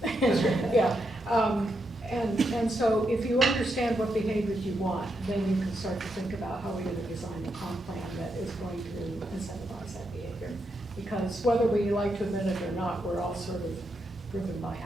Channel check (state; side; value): normal; both; correlation 0.82